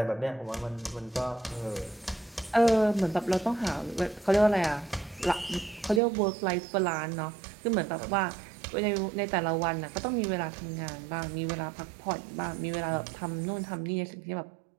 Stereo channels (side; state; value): left; drops out; at 6.0 s